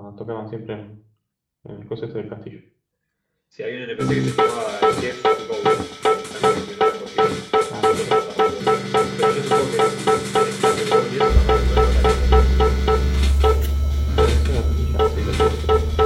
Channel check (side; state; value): both; identical; correlation 1.00